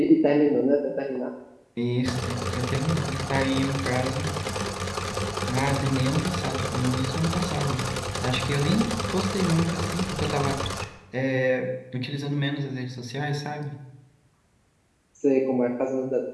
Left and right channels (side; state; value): both; identical; correlation 1.00